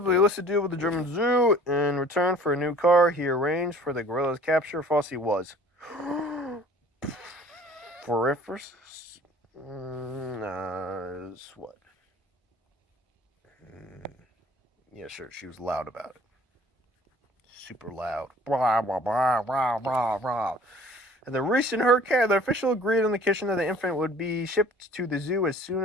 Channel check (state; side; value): normal; both; correlation 0.50